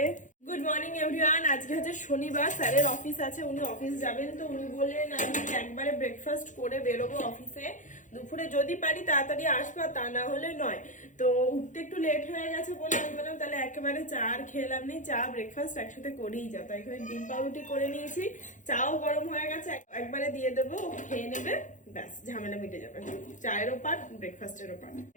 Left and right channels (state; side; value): late; right; 0.37 ms